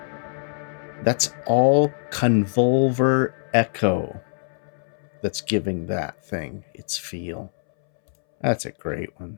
That's all convolver echo that's giving that thing its feel. That's a great one.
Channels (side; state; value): right; silent; 63 dB below the other